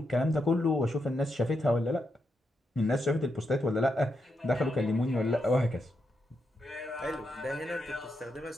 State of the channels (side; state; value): both; normal; correlation 0.83